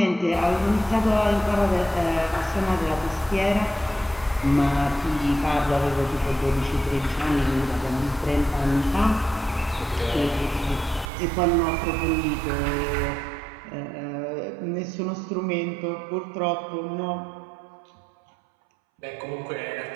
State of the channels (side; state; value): left; drops out; at 11.1 s